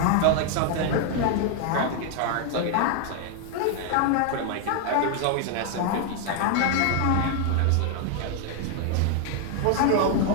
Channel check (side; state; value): both; different; correlation 0.01